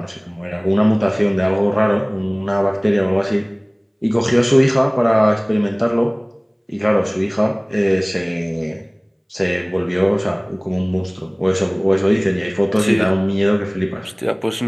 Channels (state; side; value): identical; both; correlation 1.00